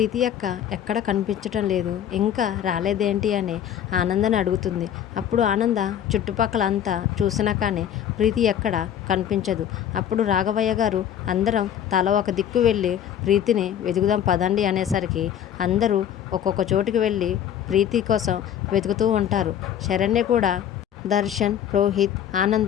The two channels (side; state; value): right; quieter; 9.8 dB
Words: అక్క ఎక్కడ కనిపించటం లేదు, ఇంకా రాలేదేంటి అని ఆనందని అడుగుతుంది. అప్పుడు ఆనంద చుట్టుపక్కల అంతా చూసినా కానీ ప్రీతి ఎక్కడ కనిపించదు. అప్పుడు రాఘవయ్య గారు అందరం తల ఒక దిక్కు వెళ్ళి ప్రీతిని వెతుకుదాం పదండి అనేసరికి అందరూ ఒక్కొక్క చోటుకి వెళ్ళి ప్రీతి కోసం వెతుకుతూ ఉంటారు. శరణ్య కూడా, దర్శన్, రోహిత్,